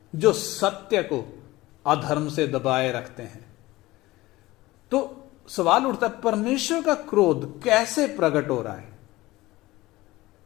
जो सत्य को अधर्म से दबाए रखते हैं। तो सवाल उठता है, परमेश्वर का क्रोध कैसे प्रकट हो रहा है?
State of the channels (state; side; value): quieter; right; 18.7 dB